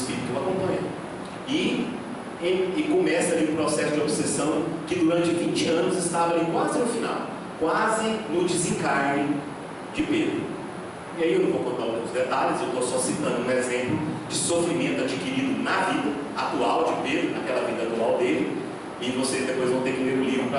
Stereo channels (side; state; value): both; identical; correlation 1.00